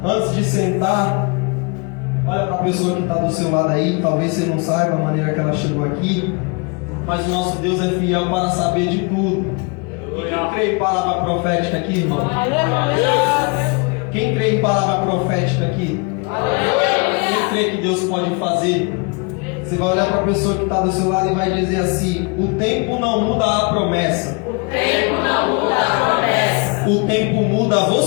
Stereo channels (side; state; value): right; quieter; 31.5 dB